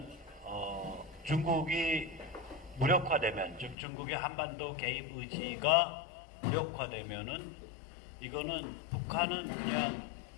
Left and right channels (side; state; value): right; drops out; at 3.8 s